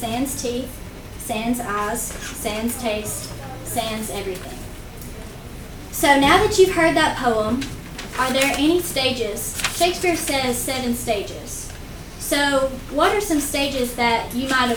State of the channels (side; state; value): both; identical; correlation 1.00